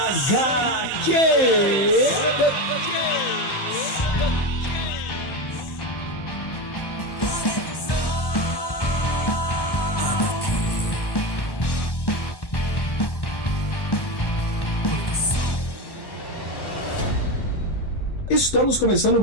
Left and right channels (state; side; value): late; right; 1.1 ms